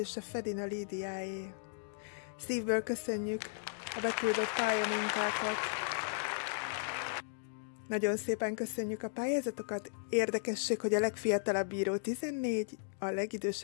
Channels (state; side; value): silent; right; digital silence